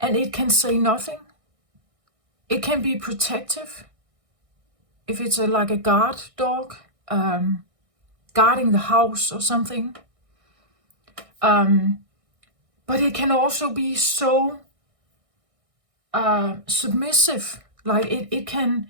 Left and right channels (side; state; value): left; late; 1.6 ms